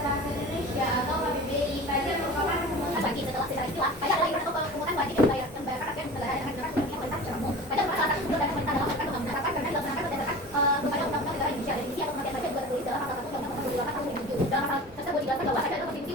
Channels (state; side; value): normal; both; correlation 0.37